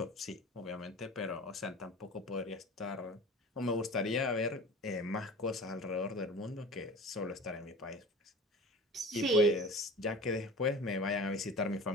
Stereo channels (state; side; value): normal; both; correlation 0.38